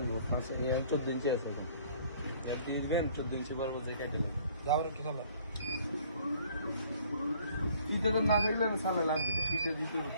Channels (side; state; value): both; inverted; correlation -0.57